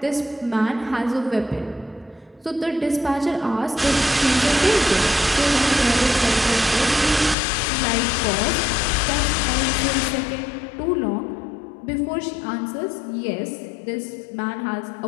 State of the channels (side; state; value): right; drops out; at 7.4 s